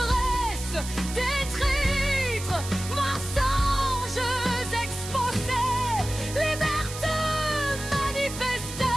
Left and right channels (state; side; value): noise; right; hiss, 10 dB below the sound